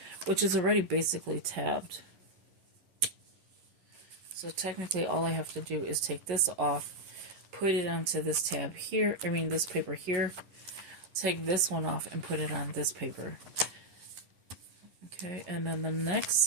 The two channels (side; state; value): left; late; 11 ms